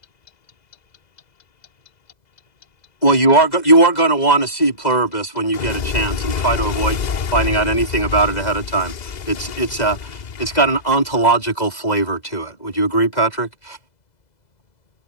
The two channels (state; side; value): late; right; 2.0 ms